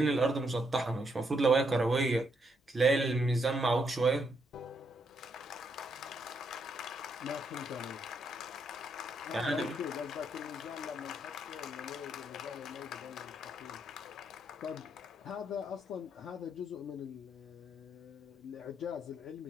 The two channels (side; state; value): both; normal; correlation 0.76